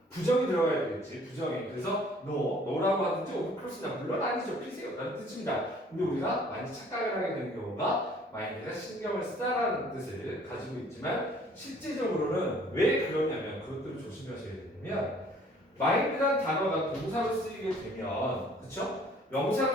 부정이 들어가야 되겠지. 부정이. 그래서 no라고 하든지 of course not. 물론 아니죠. 피세요 라는 뜻입니다. 근데 우리가 많이 착각을 하게 되는 경우가 마인드가 신경을 쓰다라는 뜻을 가지고 있지만 실제적으로는 왜 그러냐면 그것들을 조심하셔야 되냐면 마인드란 단어가 동사로 쓰이게 되면 그쵸?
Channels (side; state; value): both; normal; correlation 0.56